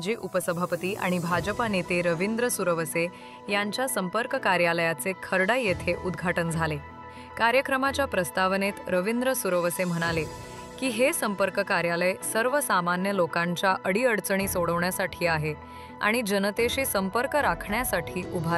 उपसभापती आणि भाजपा नेते रवींद्र सुरवसे यांच्या संपर्क कार्यालयाचे खर्डा येथे उद्घाटन झाले। कार्यक्रमाच्या प्रस्तावनेत रवींद्र सुरवसे म्हणाले की हे संपर्क कार्यालय सर्वसामान्य लोकांच्या अडीअडचणी सोडवण्यासाठी आहे आणि जनतेशी संपर्क राखण्यासाठी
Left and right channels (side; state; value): both; identical; correlation 1.00